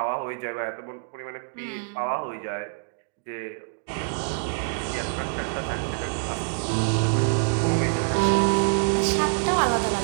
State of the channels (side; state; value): left; silent; 58 dB below the other